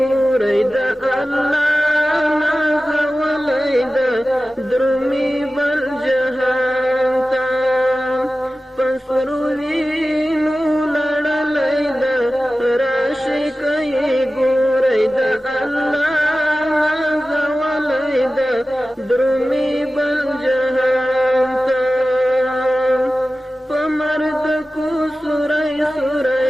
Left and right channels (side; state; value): both; normal; correlation 0.95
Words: د الله نازولای د درمی بل جهان ته پسرو وینو لړلای د راشي کوي ګورای د الله نازولای د درمی بل جهان ته پمرد کو سورای